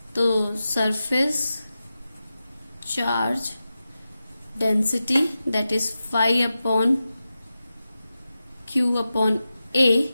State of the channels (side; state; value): both; inverted; correlation -0.93